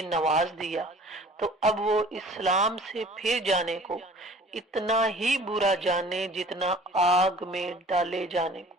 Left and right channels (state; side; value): normal; both; correlation 0.47